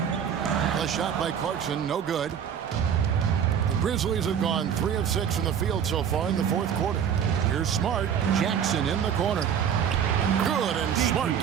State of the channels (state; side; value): quieter; left; 8.2 dB